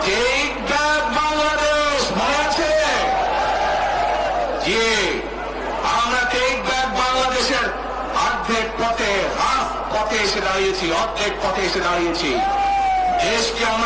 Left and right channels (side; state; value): both; identical; correlation 1.00